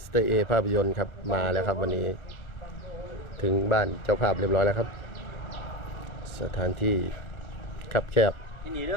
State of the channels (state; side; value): late; right; 1.3 ms